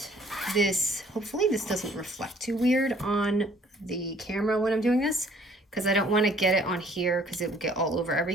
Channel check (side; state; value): both; normal; correlation 0.59